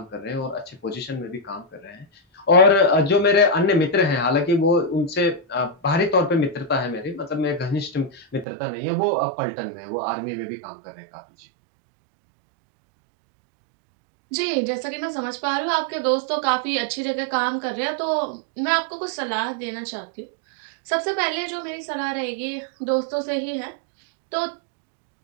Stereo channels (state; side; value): drops out; left; at 8.5 s